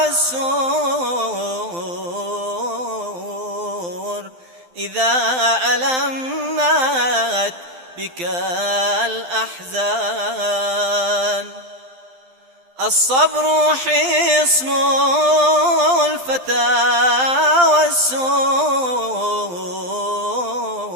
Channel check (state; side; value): late; left; 12 ms